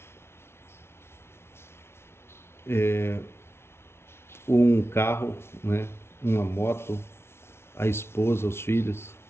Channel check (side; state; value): right; late; 0.12 ms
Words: um carro, né? Uma moto, a esposa, os filhos.